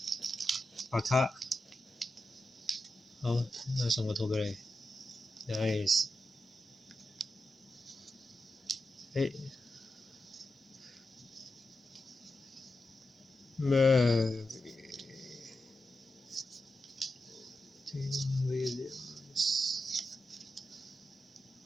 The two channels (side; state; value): both; normal; correlation 0.89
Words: 白卡，好，送個圖俾你 ，nice。Murray Williams，